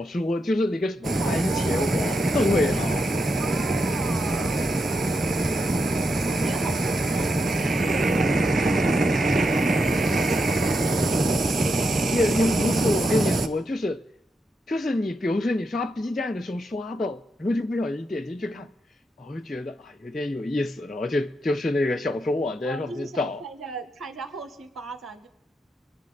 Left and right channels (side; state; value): both; normal; correlation 0.84